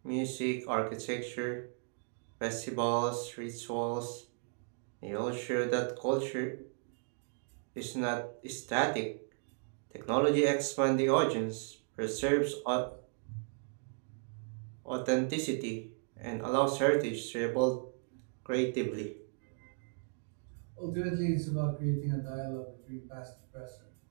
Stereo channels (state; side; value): silent; left; 54 dB below the other